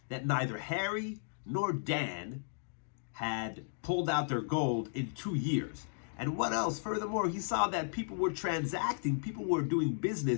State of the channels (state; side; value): silent; right; digital silence